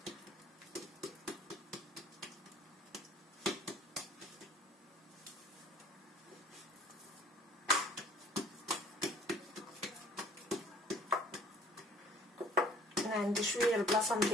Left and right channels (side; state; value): both; normal; correlation 0.52